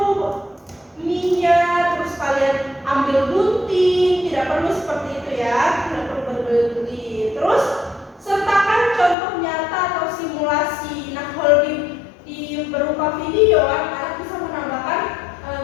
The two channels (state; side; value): drops out; right; at 9.2 s